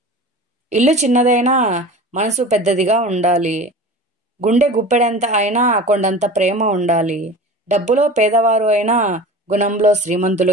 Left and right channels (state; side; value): normal; both; correlation 0.36